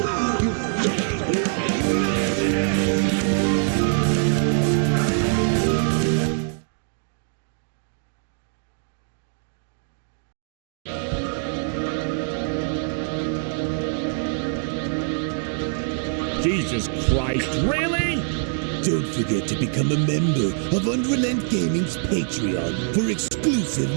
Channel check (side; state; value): left; silent; digital silence